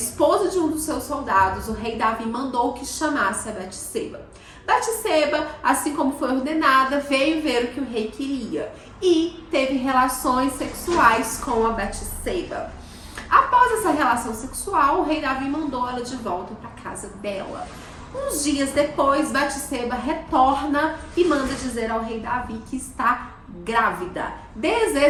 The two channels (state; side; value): identical; both; correlation 1.00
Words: de um dos seus soldados, o rei Davi mandou que chamasse a Batseba. Batseba, assim como foi ordenada, veio ver o que o rei queria e teve relações sexuais com a Batseba. Após essa relação sexual, o rei Davi mandou ela de volta para a casa dela. Uns dias depois, Batseba retorna e manda dizer ao rei Davi que está grávida.